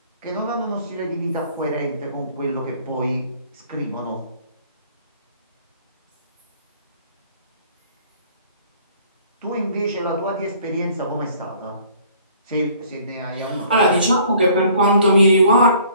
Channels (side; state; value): both; inverted; correlation -0.56